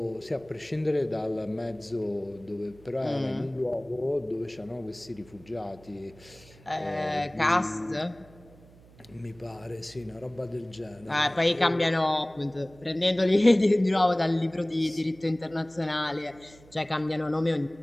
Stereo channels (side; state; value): right; noise; hum, 24 dB below the sound